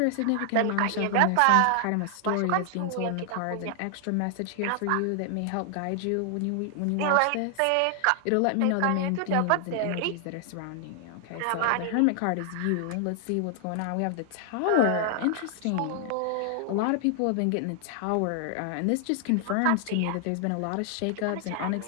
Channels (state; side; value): different; both; correlation 0.00